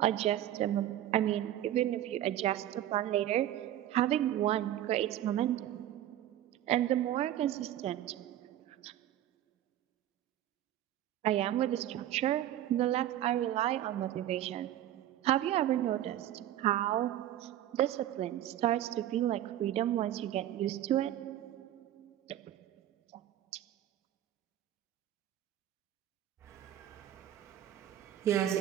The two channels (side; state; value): left; quieter; 12.5 dB